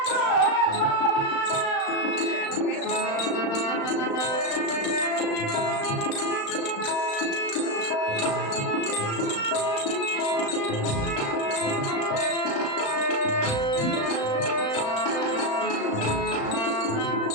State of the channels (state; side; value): late; right; 35 ms